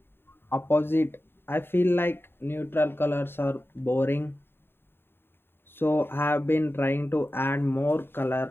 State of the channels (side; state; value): right; late; 0.11 ms